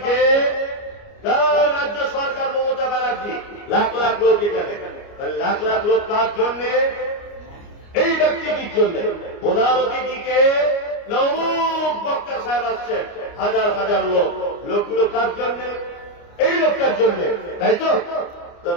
রাজ্য সরকার মমতা ব্যানার্জি, লাখ লাখ লোক এখানে, লাখ লাখ লোক কার জন্যে? এই ব্যক্তিটির জন্য। প্রধান অতিথিকে নবুক বক্তা সাহেব আসছেন, হাজার হাজার লোক, লোকগুলো কার জন্য? এই লোকটার জন্য, তাই তো?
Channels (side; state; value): right; late; 29 ms